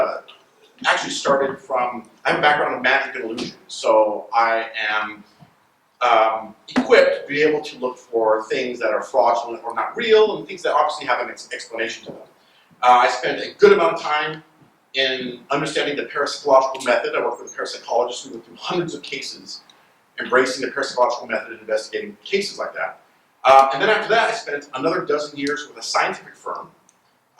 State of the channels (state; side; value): identical; both; correlation 1.00